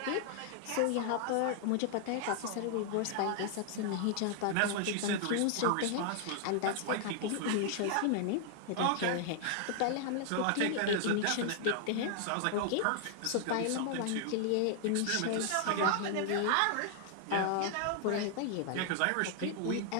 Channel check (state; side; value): different; both; correlation 0.00